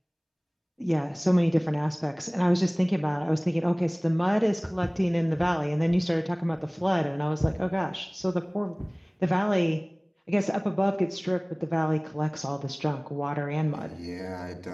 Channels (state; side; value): identical; both; correlation 1.00